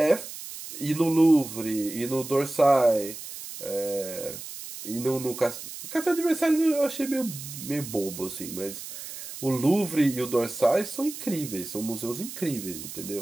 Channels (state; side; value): noise; right; hiss, 11 dB below the sound